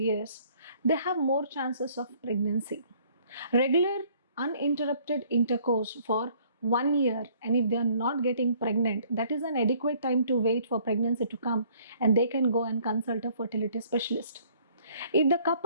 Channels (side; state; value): both; inverted; correlation -0.60